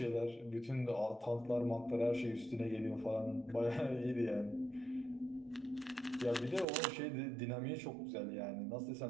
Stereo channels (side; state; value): left; drops out; at 6.7 s